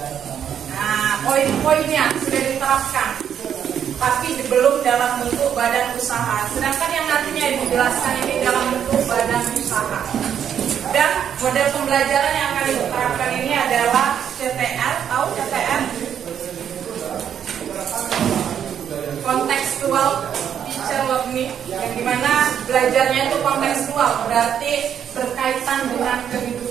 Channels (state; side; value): quieter; left; 8.8 dB